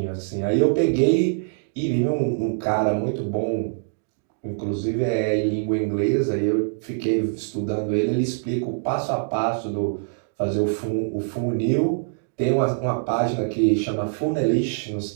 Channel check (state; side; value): silent; left; digital silence